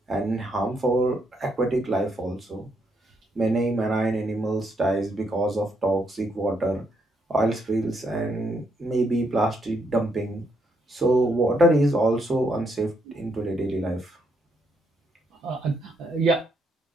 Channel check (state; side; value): normal; both; correlation 0.76